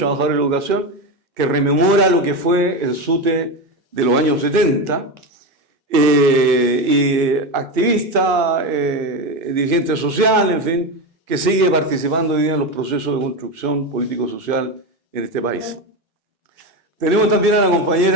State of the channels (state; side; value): normal; both; correlation 0.17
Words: de la Educación, que rememora lo que fue el SUTE de los años 70, y activista, dirigente social, en fin, que sigue participando hoy día en los procesos de construcción político-social en este país. Tenemos también a la